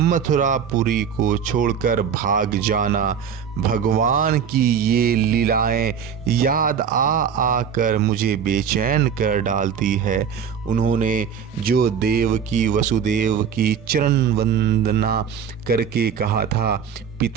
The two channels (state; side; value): quieter; left; 7.4 dB